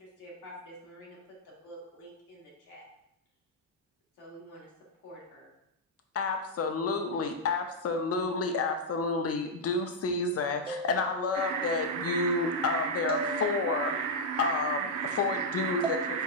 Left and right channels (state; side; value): normal; both; correlation -0.05